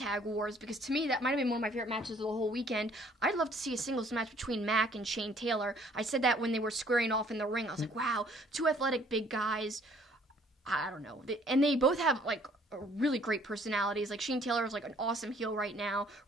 Wars, because to me that might have been one of my favorite matches of the whole weekend. I'd love to see a singles match between Mack and Shane Taylor. I said that when they were squaring off in the ring. I was like, wow, two athletic big guys. I don't know. And they both have like really great personalities. Like, Shane Taylor is like an awesome heel right now.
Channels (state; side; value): normal; both; correlation 0.59